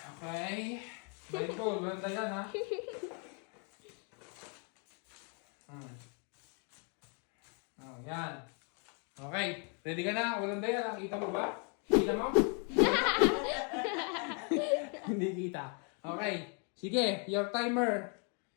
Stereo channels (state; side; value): quieter; right; 38.4 dB